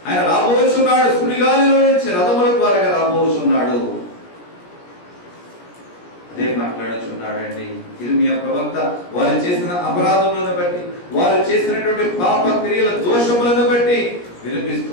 ఆయన రాబోచున్నాడు. సుడిగాలిలో నుంచి రథముల ద్వారా రాబోచున్నాడు. అదే మాట్లాడుచున్నాడండి ఇర్మియా ప్రవక్త. వారు చేసిన అపరాధములను బట్టి, వారు చేసినటువంటి పాప క్రియల దోషములను బట్టి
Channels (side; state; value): right; late; 17 ms